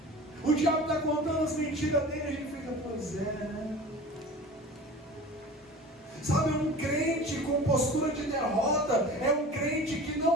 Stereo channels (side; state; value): both; normal; correlation 0.38